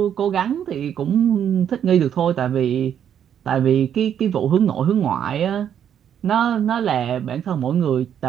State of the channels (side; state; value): left; quieter; 9.1 dB